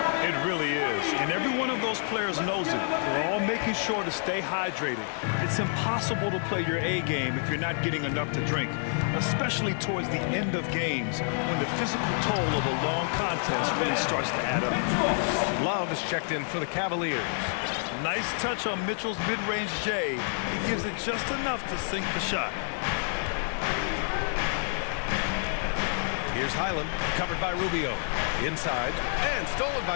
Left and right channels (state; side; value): silent; right; 59 dB below the other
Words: It really is. And every one of those players knows it. They're all making sure to stay hydrated. It's impossible to play your A game if you're not getting enough to drink, especially towards the end of games when the physical toll of a long contest really starts to add up. Love is checked in for the Cavaliers. Nice touch on Mitchell's mid-range J. He gives it just enough to sink the shot. Here's Highland, covered by Rubio. Inside, and stolen